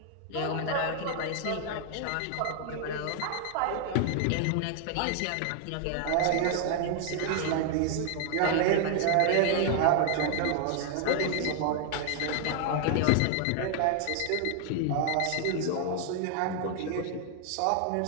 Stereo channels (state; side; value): different; both; correlation 0.00